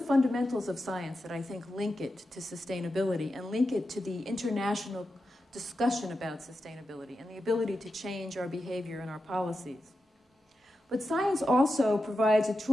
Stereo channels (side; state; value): both; normal; correlation 0.90